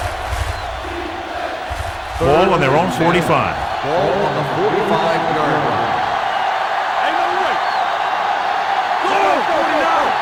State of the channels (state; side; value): identical; both; correlation 1.00